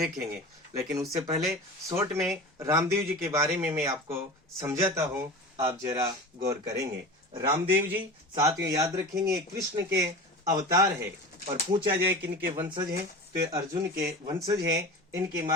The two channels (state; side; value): normal; both; correlation 0.32